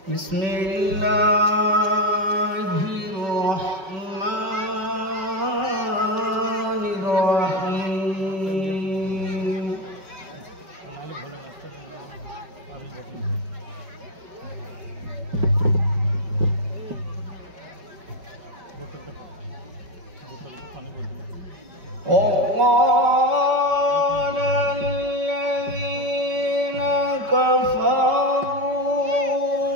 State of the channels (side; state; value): left; late; 5.2 ms